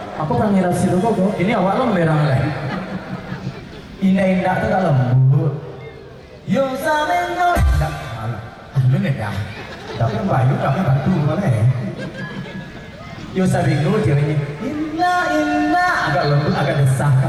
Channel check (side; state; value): both; identical; correlation 1.00